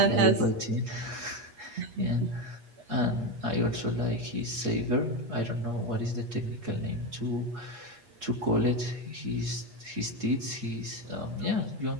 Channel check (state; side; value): late; left; 8.4 ms